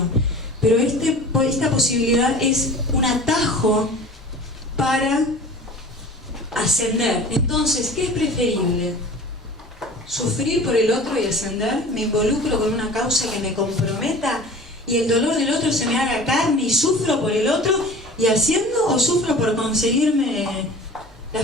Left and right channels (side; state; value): both; normal; correlation 0.41